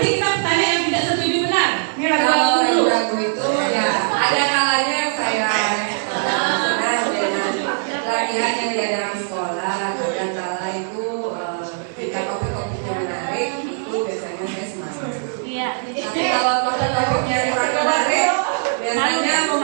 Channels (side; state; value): left; silent; digital silence